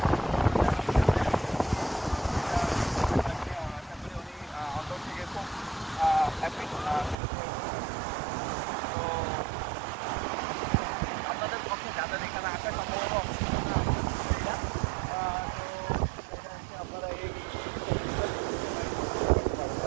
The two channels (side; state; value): left; drops out; at 7.2 s